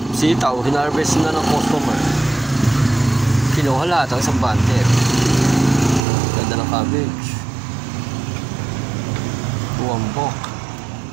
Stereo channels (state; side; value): drops out; left; at 6.1 s